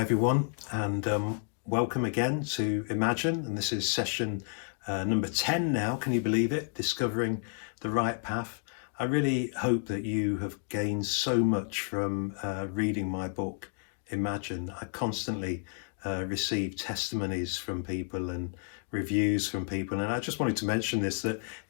everyone, and welcome again to Imagine. And this is session number 10 now. Can you believe it? Discovering the right path. I really hope that you have gained so much from reading my book, Imagine. I constantly receive testimonies from people and reviews from people. And I just wanted to mention this, that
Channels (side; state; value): right; silent; 56 dB below the other